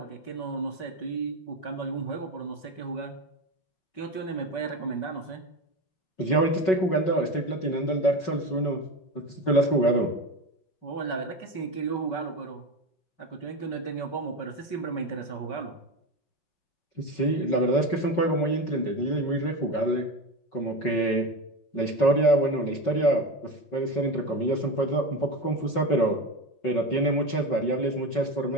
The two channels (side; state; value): right; late; 5.4 ms